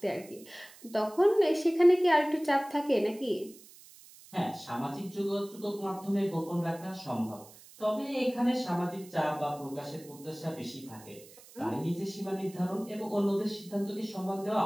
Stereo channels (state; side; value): noise; right; hiss, 21 dB below the sound